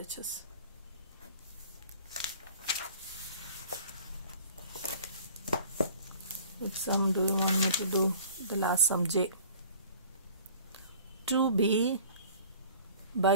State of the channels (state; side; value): inverted; both; correlation -0.48